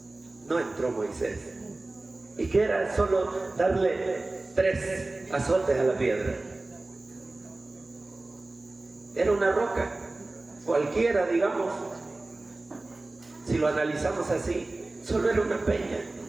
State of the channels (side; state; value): left; quieter; 3.0 dB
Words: No entró Moisés. ¿Y qué era? Solo darle 3 azotes a la piedra. Era una roca, cualquiera, digamos. Si lo analizamos así, solo era una peña.